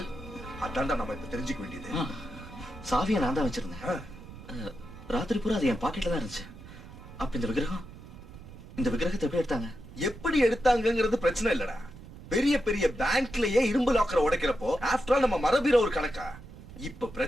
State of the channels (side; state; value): right; noise; rumble, 16 dB below the sound